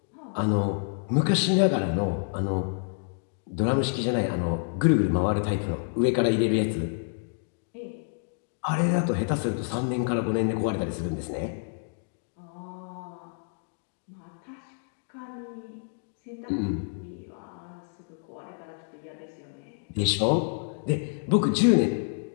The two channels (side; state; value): right; silent; digital silence